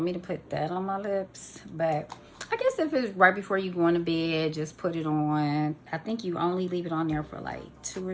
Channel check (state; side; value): identical; both; correlation 1.00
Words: me to put that on my lips? But I guess if it's right before you go into bed, just put it on. I think you only leave it on there for like 2 or